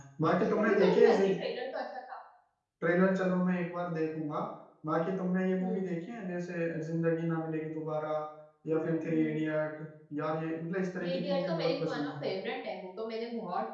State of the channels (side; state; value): both; identical; correlation 1.00